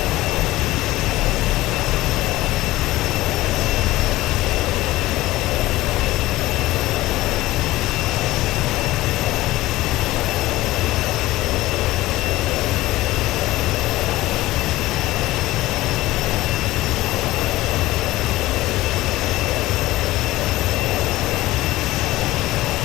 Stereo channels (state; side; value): quieter; right; 17.6 dB